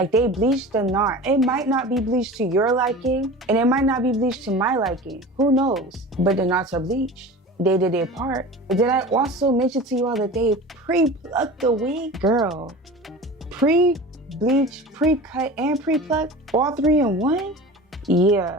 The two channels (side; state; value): both; normal; correlation 0.35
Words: they bleached the knot. It might not be bleached to your liking and it might not be bleached to my liking. Who knows? But the knots are bleached. They did their part. Did I also mention to you all that they pre-plucked the wig? Girl, pre-bleach, pre-cut, and pre-plucked, all three in one?